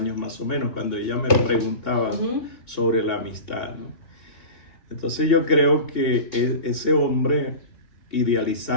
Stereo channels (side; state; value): right; late; 2.8 ms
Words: más o menos, cuando ella me preguntaba sobre la amistad, ¿no? Entonces yo creo que ese hombre,